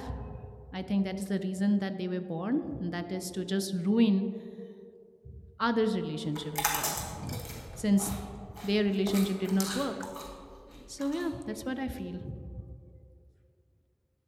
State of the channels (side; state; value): both; identical; correlation 1.00